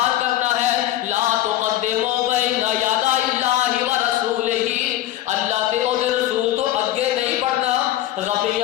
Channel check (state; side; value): quieter; right; 14.0 dB